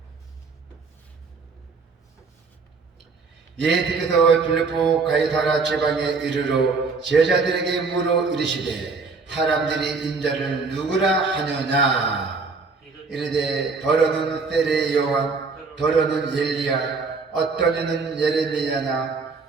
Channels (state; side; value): quieter; left; 4.4 dB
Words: 예수께서 빌립보 가이사랴 지방에 이르러 제자들에게 물어 이르시되 사람들이 인자를 누구라 하느냐. 이르되 더러는 세례 요한, 더러는 엘리야, 어떤 이는 예레미야나